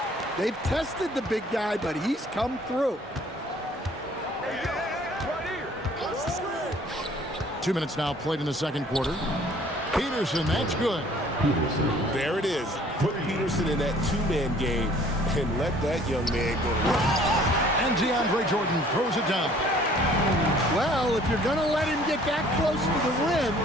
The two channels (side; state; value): both; normal; correlation 0.55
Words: They've tested the big guy, but he's come through. 2 minutes now played in the second quarter. Peterson, that's good. There it is. Put Peterson in that two-man game and let that young man go to work. And DeAndre Jordan throws it down. Well, if you're going to let him get that close to the rim,